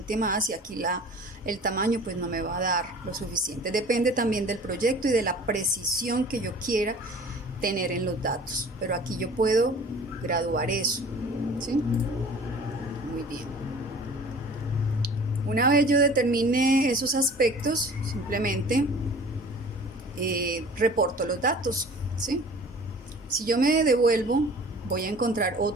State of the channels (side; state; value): both; normal; correlation 0.45